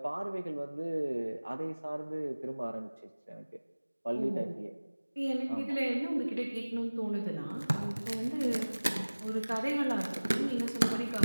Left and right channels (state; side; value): inverted; both; correlation -1.00